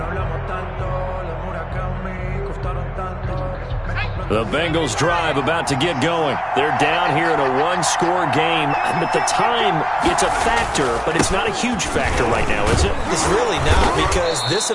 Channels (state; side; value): identical; both; correlation 1.00